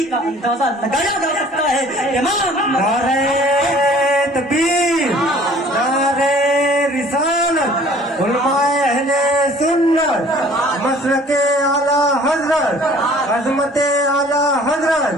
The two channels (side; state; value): both; normal; correlation 0.52